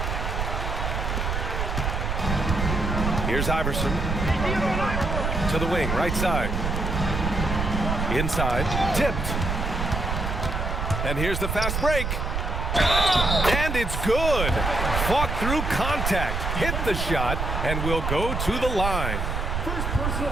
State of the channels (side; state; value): right; noise; rumble, 1 dB below the sound